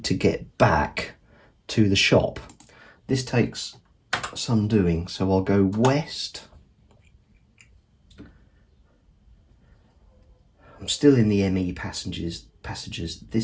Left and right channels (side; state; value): both; identical; correlation 1.00